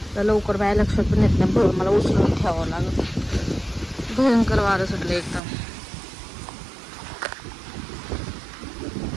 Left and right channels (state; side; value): drops out; left; at 5.4 s